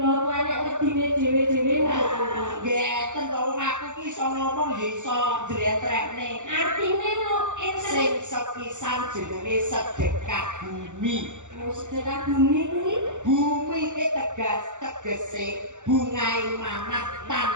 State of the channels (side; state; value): left; late; 0.85 ms